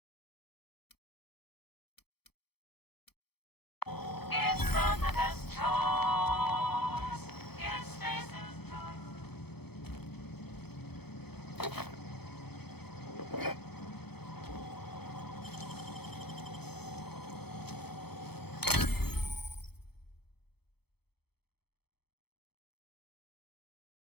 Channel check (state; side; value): late; right; 0.97 ms